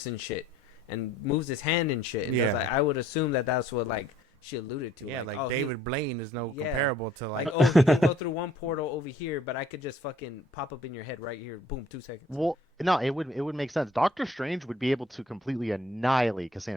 and shit, and moves his hand and shit. And Yeah. like, I would assume that that's what like she alluded to. Yeah, like oh, he- David Blaine is no Yeah. comparable to like. Like, oh, he can go through one portal over here, but I could just fucking pop up in your head right here. Boom, 2 seconds. well, no, it would make sense. Doctor Strange would be able to completely annihilate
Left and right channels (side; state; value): both; normal; correlation 0.58